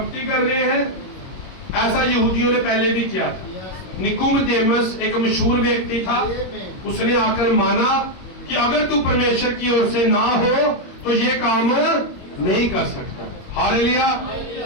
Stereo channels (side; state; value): right; late; 22 ms